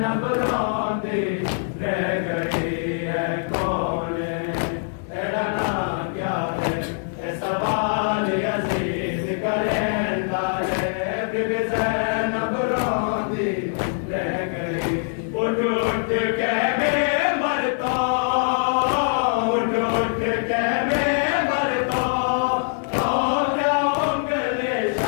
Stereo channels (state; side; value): silent; right; digital silence